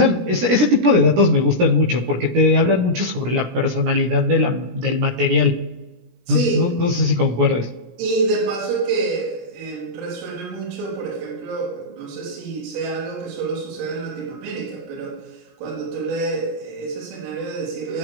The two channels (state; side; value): late; left; 17 ms